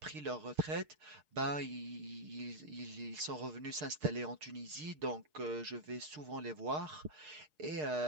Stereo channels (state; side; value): late; left; 6.6 ms